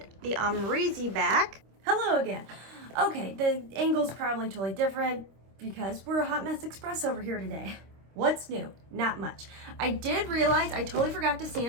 the Amrezy back. Hello again. Okay, the angle's probably totally different because we're a hot mess express over here today. What's new? Not much. I did realize I totally forgot to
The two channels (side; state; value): left; late; 26 ms